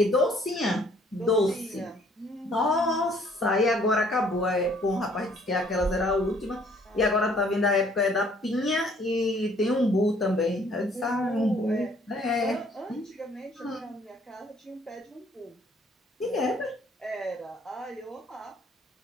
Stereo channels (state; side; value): normal; both; correlation 0.61